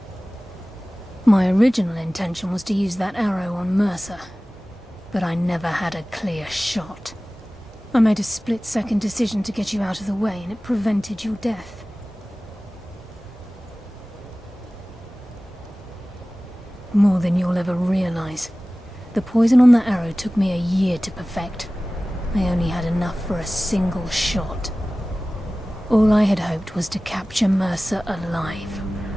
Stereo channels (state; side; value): normal; both; correlation 0.97